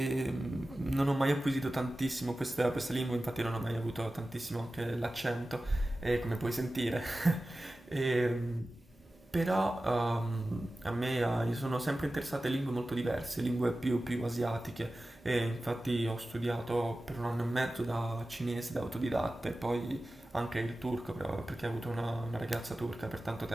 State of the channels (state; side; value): normal; both; correlation 0.95